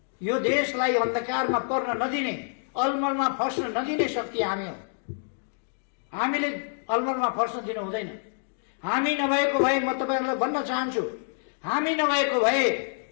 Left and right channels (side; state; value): right; silent; digital silence